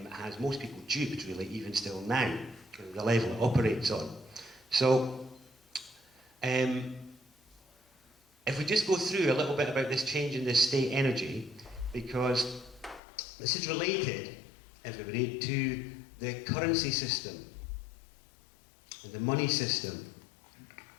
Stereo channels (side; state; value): right; drops out; at 13.0 s